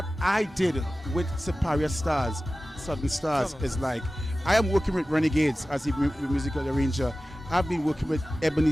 I did with Superior Stars, Southern Stars, is like, I am working with Renegades as a musical arranger. I've been working with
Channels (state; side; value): normal; both; correlation 0.95